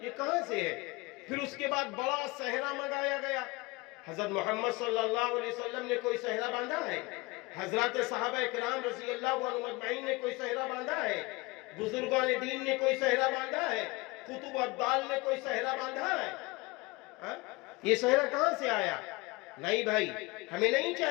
یہ کہاں سے ہے؟ پھر اس کے بعد بڑا صحرا منگایا گیا. حضرت محمد صلی اللہ علیہ وسلم نے کوئی صحرا باندھا ہے؟ حضرات صحابہ کرام رضی اللہ عنہم اجمعین نے کوئی صحرا باندھا ہے؟ بزرگان دین نے کوئی صحرا باندھا ہے؟ قطب ابدال نے کوئی صحرا باندھا ہے؟ یہ صحرا کہاں سے آیا؟ نہیں بھائی، ہمیں نہیں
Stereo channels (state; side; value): quieter; right; 23.8 dB